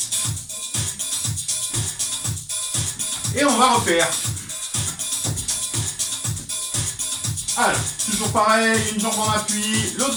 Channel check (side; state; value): both; identical; correlation 1.00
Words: Et on va refaire. Alors, toujours pareil, une jambe en appui, l'autre